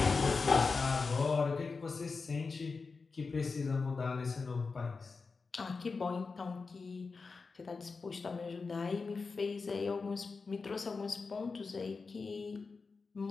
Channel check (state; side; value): quieter; right; 4.5 dB